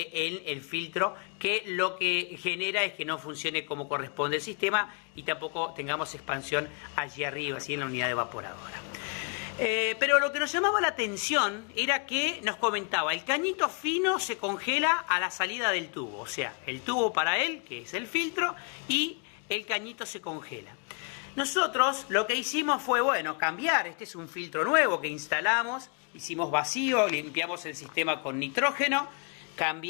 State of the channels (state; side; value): quieter; right; 36.2 dB